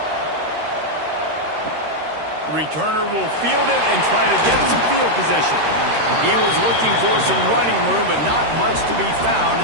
Returner will field it and try to get some field position. He was looking for some running room, but not much to be found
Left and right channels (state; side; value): late; left; 13 ms